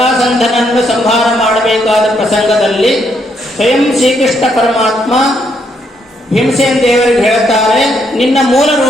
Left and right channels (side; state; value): both; normal; correlation 0.75